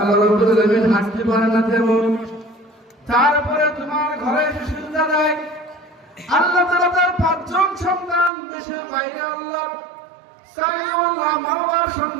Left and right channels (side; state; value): left; drops out; at 8.3 s